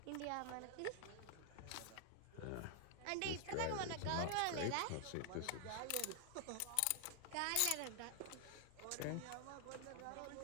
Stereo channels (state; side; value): different; both; correlation 0.00